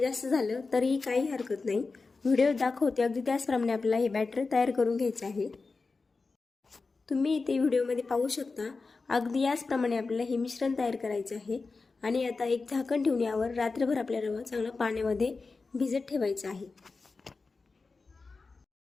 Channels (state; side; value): quieter; right; 4.1 dB